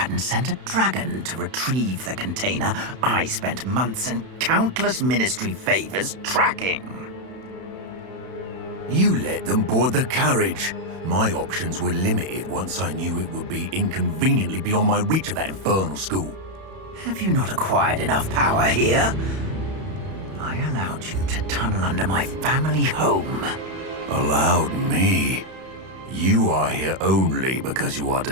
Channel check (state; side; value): late; left; 31 ms